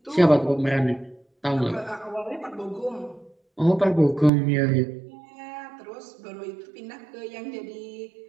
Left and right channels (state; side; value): drops out; left; at 4.3 s